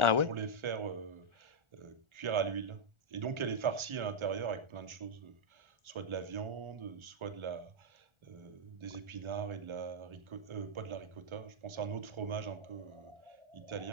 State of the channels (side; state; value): left; late; 1.4 ms